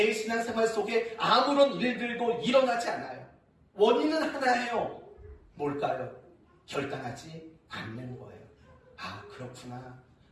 신앙생활 속에 아무런 일들도 일어나지 않아요. 원인은 하나예요. 뭘까요? 결단하지 않는 거예요. 아, 그렇구나.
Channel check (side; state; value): both; identical; correlation 1.00